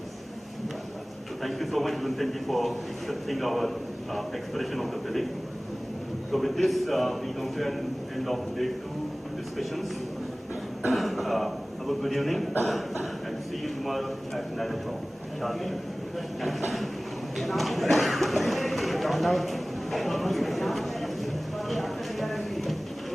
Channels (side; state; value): both; normal; correlation 0.98